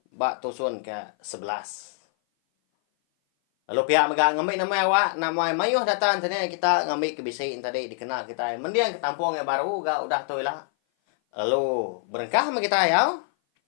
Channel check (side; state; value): right; silent; 57 dB below the other